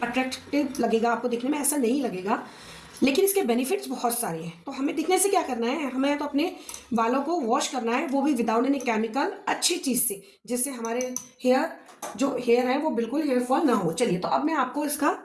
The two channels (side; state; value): both; identical; correlation 1.00